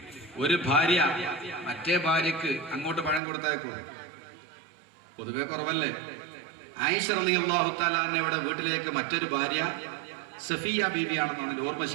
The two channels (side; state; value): left; drops out; at 3.2 s